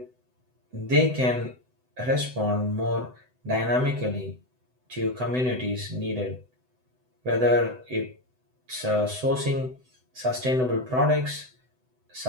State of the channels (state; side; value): late; left; 7.9 ms